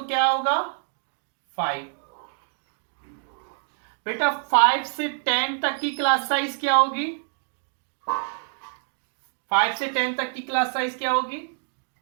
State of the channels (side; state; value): left; silent; digital silence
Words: क्या होगा 5। बेटा 5 से 10 तक की क्लास साइज क्या होगी, 5 से 10 तक की क्लास साइज क्या होगी